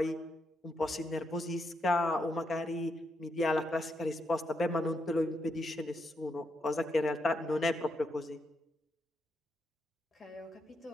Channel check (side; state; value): both; normal; correlation 0.81